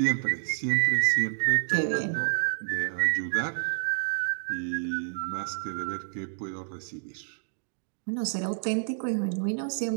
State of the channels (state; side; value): silent; left; digital silence